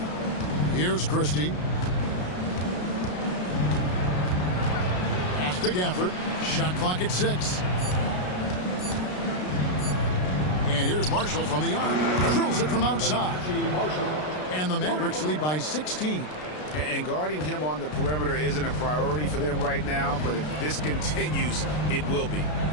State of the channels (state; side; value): late; right; 33 ms